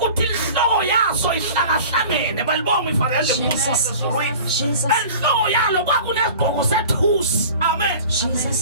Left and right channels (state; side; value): inverted; both; correlation -0.41